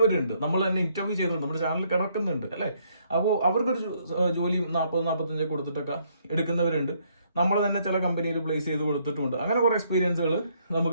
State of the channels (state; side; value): inverted; both; correlation -0.70